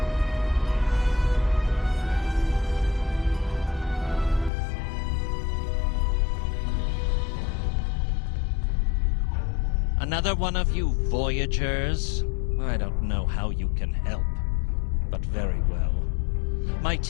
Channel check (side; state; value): right; drops out; at 4.5 s